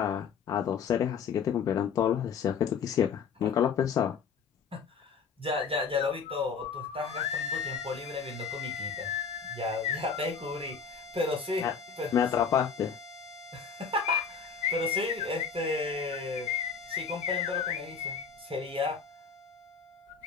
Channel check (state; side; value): quieter; right; 6.1 dB